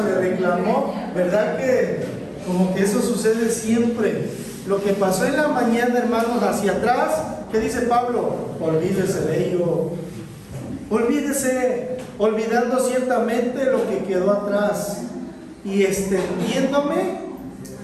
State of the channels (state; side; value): identical; both; correlation 1.00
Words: le reclamó. ¿Verdad que como que eso sucede siempre? Lo que pasó en la mañana, hermanos, hacia atrás, ¿qué dice Pablo? Olvídese de ello. Olvídese, olvidando ciertamente lo que quedó atrás y extendiéndome